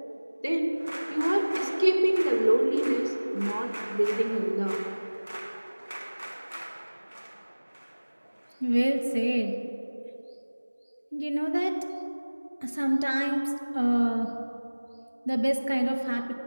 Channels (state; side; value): inverted; both; correlation -1.00